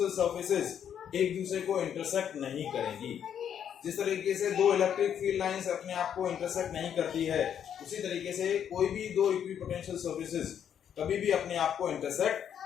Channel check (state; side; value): quieter; right; 8.9 dB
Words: सर्फेसेस एक दूसरे को इंटरसेक्ट नहीं करेंगी। जिस तरीके से दो इलेक्ट्रिक फील्ड लाइंस अपने आप को इंटरसेक्ट नहीं करती है, उसी तरीके से कोई भी दो इक्विपोटेंशियल सर्फेसेस कभी भी अपने आप को इंटरसेक्ट